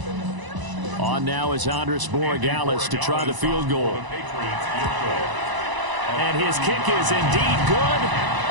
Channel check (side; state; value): left; late; 1.0 ms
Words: On now is Andres Borregales to try the field goal. And his kick is indeed good.